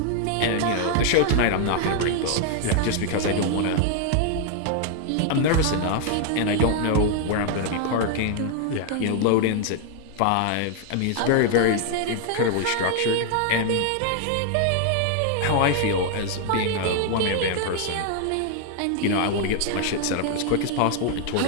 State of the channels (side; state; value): both; different; correlation 0.00